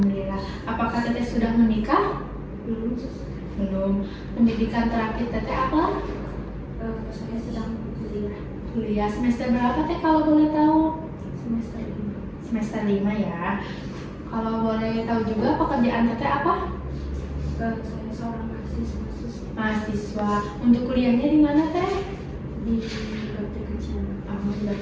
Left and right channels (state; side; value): identical; both; correlation 1.00